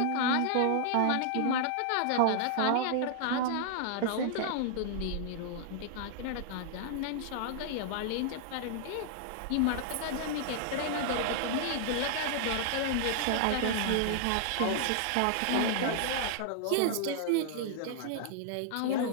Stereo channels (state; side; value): different; both; correlation -0.01